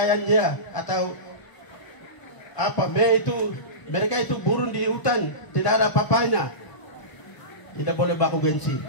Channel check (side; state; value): right; late; 1.0 ms